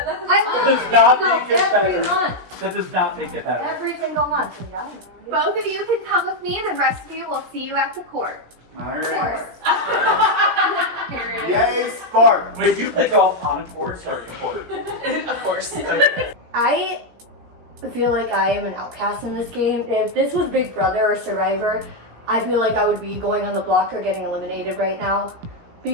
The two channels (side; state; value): left; late; 17 ms